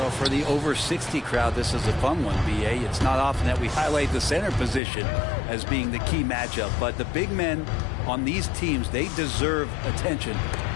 for the over 60 crowd, this is a fun one, B.A. It's not often that we highlight the center position as being the key matchup, but the big men on these teams, they deserve attention.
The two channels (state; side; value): drops out; right; at 4.8 s